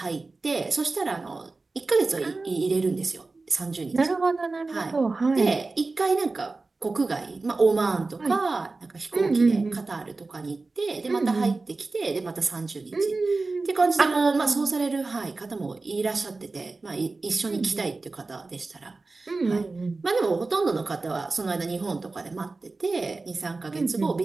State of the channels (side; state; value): left; quieter; 3.6 dB